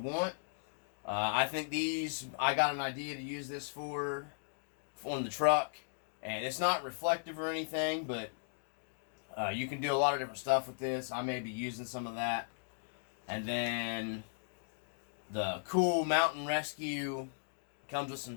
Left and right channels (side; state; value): right; silent; digital silence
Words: I think these, I got an idea to use this for on the truck. And it's not reflective or anything, but you can do a lot of different stuff with this. I may be using some of that. And then the cool mountain rescue comes with some